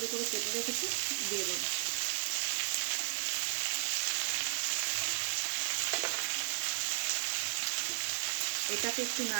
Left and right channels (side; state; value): left; silent; 55 dB below the other